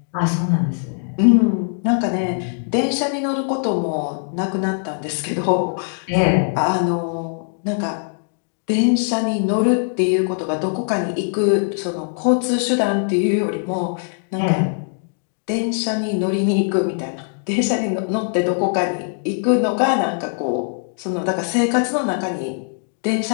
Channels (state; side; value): silent; right; digital silence